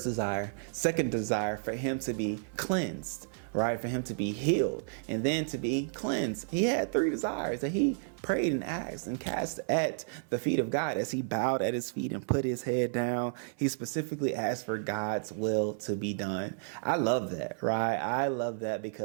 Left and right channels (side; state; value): left; silent; 57 dB below the other